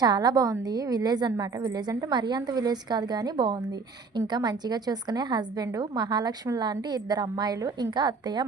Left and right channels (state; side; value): quieter; left; 4.6 dB